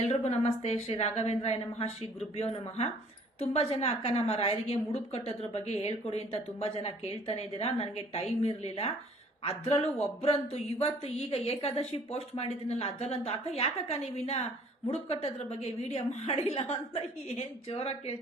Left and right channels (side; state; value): both; normal; correlation 0.56